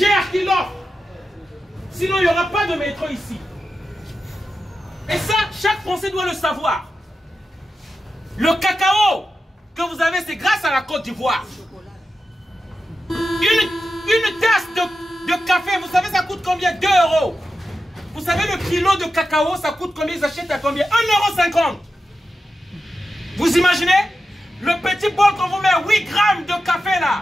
qui l'offre. Sinon, il n'y aura pas de métro ici. Et ça, chaque Français doit le savoir. Le cacao que vous avez, c'est grâce à la Côte d'Ivoire. Une tasse de café, vous savez, ça coûte combien? 2 €. Vous savez, le kilo de cacao, ça coûte combien? Ils achètent à combien? 1,50 €. Vous imaginez? Le petit bol qu'on vous met 8 grammes de café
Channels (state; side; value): normal; both; correlation 0.91